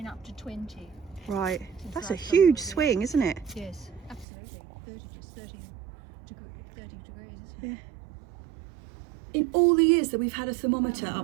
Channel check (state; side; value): drops out; left; at 4.2 s